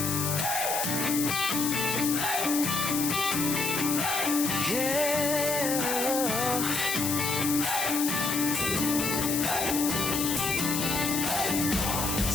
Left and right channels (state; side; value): noise; left; hiss, 1 dB below the sound